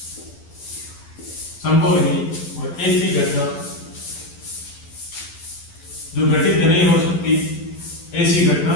संभव नहीं। और ऐसी घटना जो घटित नहीं हो सकती, ऐसी घटना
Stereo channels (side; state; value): right; late; 12 ms